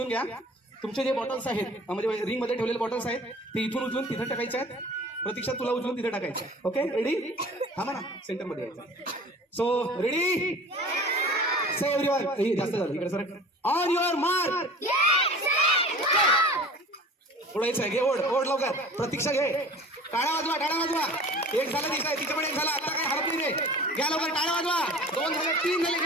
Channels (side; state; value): both; normal; correlation 0.43